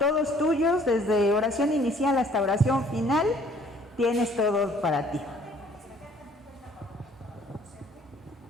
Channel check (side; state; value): both; normal; correlation 0.58